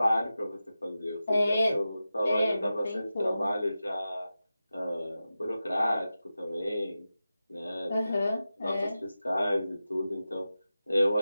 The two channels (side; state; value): both; inverted; correlation -0.93